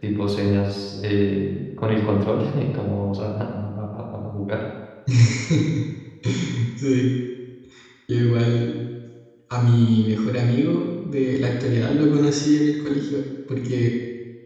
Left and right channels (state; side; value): identical; both; correlation 1.00